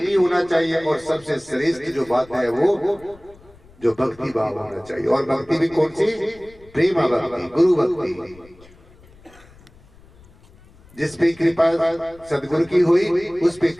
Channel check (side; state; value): left; noise; rumble, 25 dB below the sound